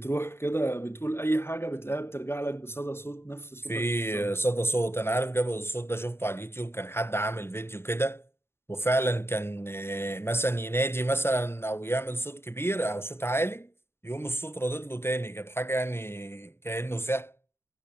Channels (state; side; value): late; right; 0.12 ms